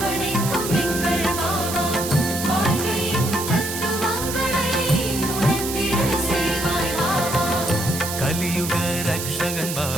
எங்கள் பாபா, வாழ்க்கையின் தத்துவங்களை உணர்த்திட செய்வாய் பாபா. கலியுக ரக்ஷகன்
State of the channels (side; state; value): right; noise; hiss, 6 dB below the sound